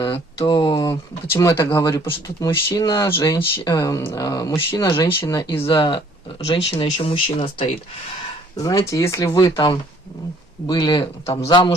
то почему я так говорю? Потому что тут мужчина, женщина, и за женщиной еще мужчина стоит. Знаете, если вы там были там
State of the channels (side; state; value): both; normal; correlation 0.59